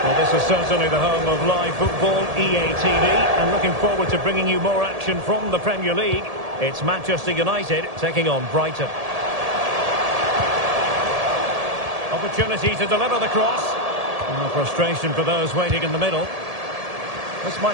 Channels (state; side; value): late; left; 1.7 ms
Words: Well, this is certainly the home of live football, EA TV, and looking forward to bringing you more action from the Premier League. It's Manchester United taking on Brighton. Opportunity to deliver the cross. Oh, frustration for those waiting in the middle. This